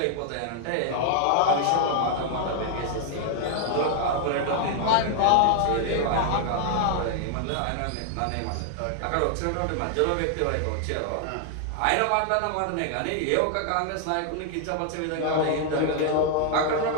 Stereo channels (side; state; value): both; different; correlation 0.00